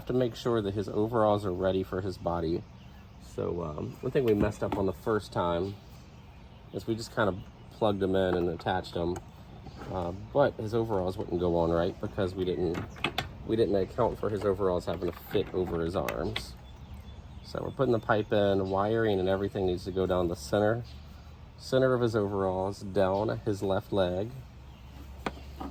to make sure that his overalls are ready for his body. So one thing we messed up on the first time is we just kind of plugged them in and attached them, but his overalls wouldn't go on right because we didn't account for his overalls having to fit over his arms. So we're putting the pipe in, wiring and everything needs to go down the center of his overalls, down his left leg.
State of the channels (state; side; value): identical; both; correlation 1.00